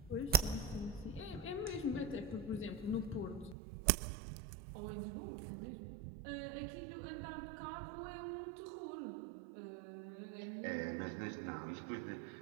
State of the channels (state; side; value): drops out; left; at 3.6 s